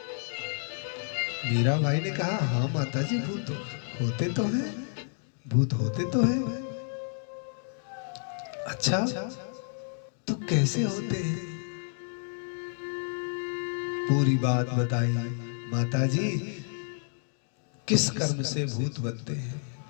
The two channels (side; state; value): right; silent; 58 dB below the other